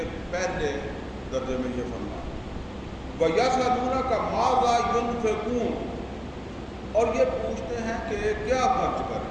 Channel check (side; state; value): both; identical; correlation 1.00